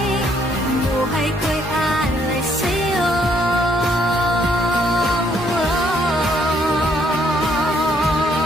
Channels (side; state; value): both; normal; correlation 0.69